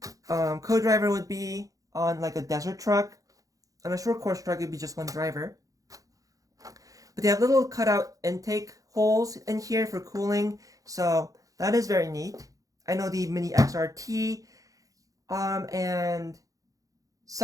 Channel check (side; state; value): left; late; 0.17 ms